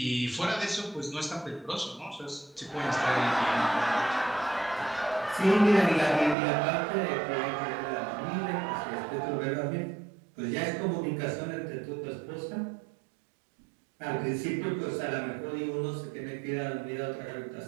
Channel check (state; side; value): drops out; left; at 6.4 s